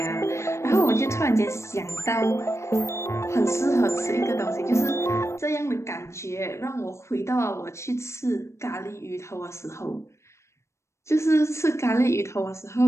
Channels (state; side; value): late; right; 0.13 ms